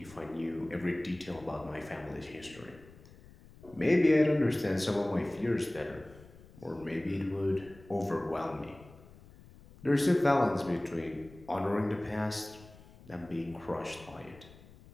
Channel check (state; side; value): noise; left; rumble, 22 dB below the sound